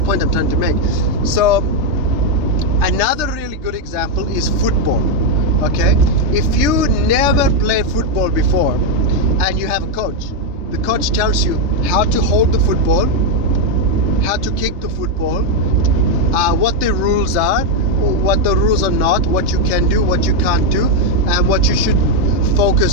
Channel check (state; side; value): late; left; 3.3 ms